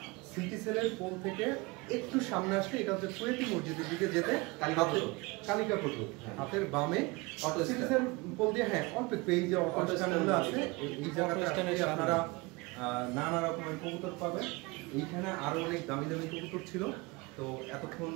সিটি সেলের পোল থেকে একটু সামনে আসলে এটা হচ্ছে কুয়েতি মসজিদের দিকে যেতে কালিকা পটু হাতের বামে সিটি সেল পোল দিয়ে। হ্যাঁ, অল্প একটু এই যে অটো স্ট্যান্ডগুলো আছে, এই জায়গাটা আপনারা নানা রকমের কবুতর পাবেন। এইখানে আরো অনেক দামি দামি কবুতর ছিল। তো এতক্ষণ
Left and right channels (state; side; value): quieter; left; 24.7 dB